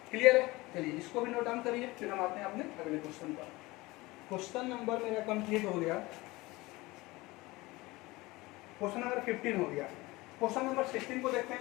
क्लियर है। चलिए इसको भी नोट डाउन करिए, फिर हम आते हैं अपने अगले क्वेश्चन पर। क्वेश्चन नंबर मेरा कंप्लीट हो गया, क्वेश्चन नंबर 15 हो गया। क्वेश्चन नंबर 16 को देखते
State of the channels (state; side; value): quieter; right; 21.3 dB